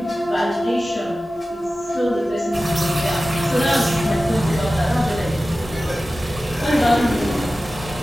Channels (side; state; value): both; normal; correlation 0.95